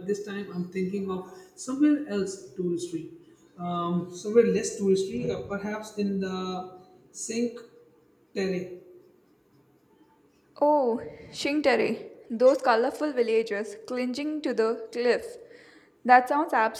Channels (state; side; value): identical; both; correlation 1.00